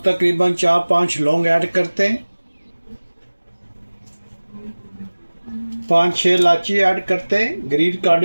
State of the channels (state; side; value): inverted; both; correlation -1.00